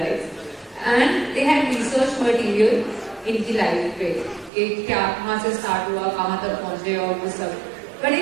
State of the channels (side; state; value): left; drops out; at 4.5 s